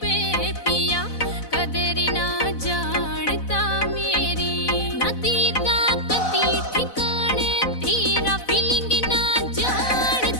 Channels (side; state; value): right; late; 4.0 ms